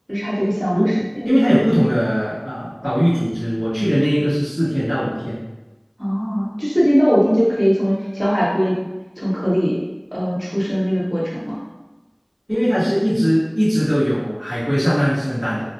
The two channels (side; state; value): both; identical; correlation 1.00